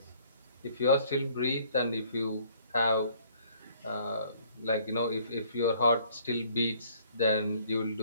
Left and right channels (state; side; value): inverted; both; correlation -0.59